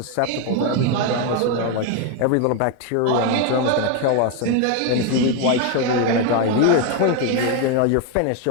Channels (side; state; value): both; different; correlation 0.01